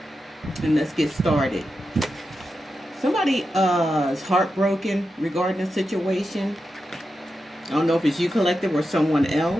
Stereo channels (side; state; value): both; normal; correlation 0.89